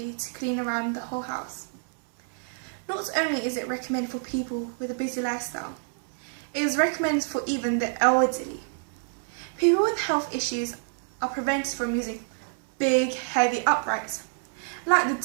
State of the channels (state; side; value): silent; left; 60 dB below the other